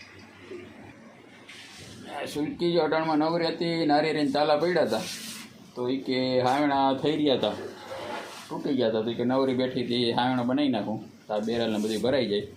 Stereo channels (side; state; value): both; identical; correlation 1.00